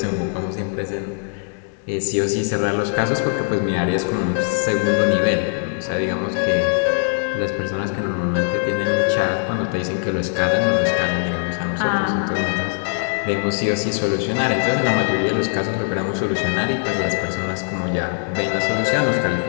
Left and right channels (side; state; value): right; silent; 60 dB below the other